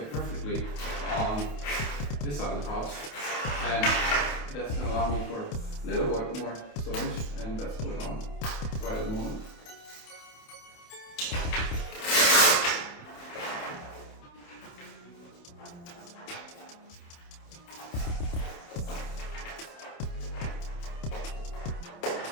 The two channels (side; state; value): right; late; 28 ms